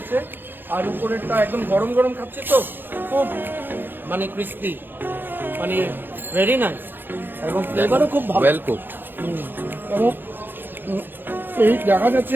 আর উপরেরটা একদম গরম গরম খাচ্ছে, তো খুব মানে ক্রিস্পি, মানে ভেরি নাইস, এবং ফ্লেভারও খুব ভালো। Well cooked. এবং এই দেখা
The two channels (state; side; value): late; left; 0.097 ms